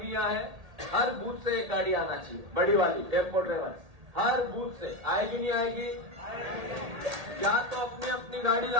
यहाँ है। हर बूथ से एक गाड़ी आना चाहिए, बड़ी वाली टेम्पो ड्राइवर। हर बूथ से आएगी, नहीं आएगी? या तो अपनी अपनी गाड़ी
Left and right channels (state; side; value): late; left; 1.8 ms